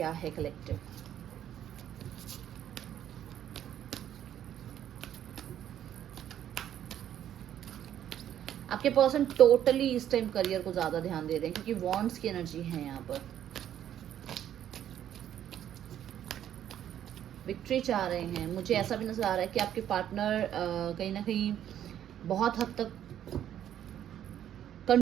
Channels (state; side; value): quieter; left; 10.6 dB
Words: है कलेक्टिव। आपके पर्सन टोटली इस टाइम करियर को ज्यादा ध्यान दे रहे हैं, क्योंकि वॉन्ड्स की एनर्जी है यहाँ पर। विक्ट्री चाह रहे हैं। मुझे ऐसा भी नजर आ रहा है कि आपके पार्टनर कहीं ना कहीं बहुत हद तक